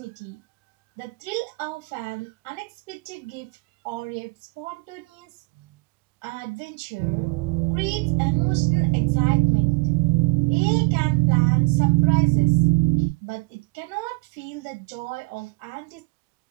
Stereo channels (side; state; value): left; quieter; 26.3 dB